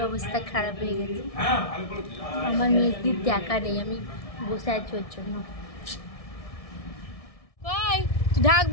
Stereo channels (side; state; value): right; late; 1.6 ms